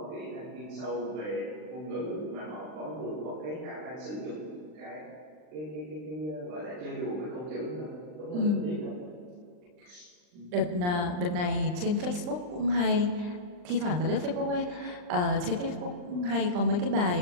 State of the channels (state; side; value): late; left; 39 ms